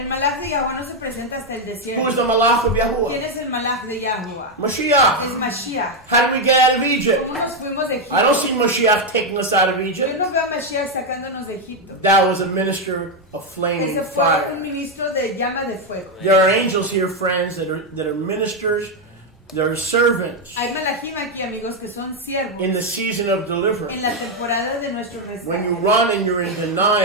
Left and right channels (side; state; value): both; normal; correlation 0.04